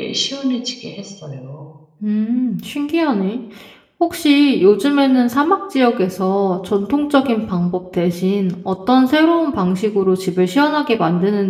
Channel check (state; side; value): identical; both; correlation 1.00